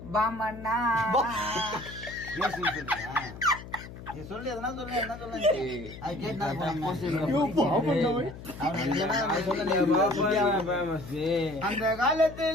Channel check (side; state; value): left; noise; hum, 14 dB below the sound